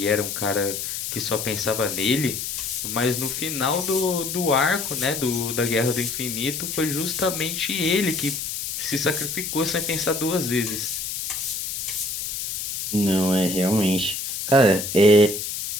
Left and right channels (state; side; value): noise; left; hiss, 4 dB below the sound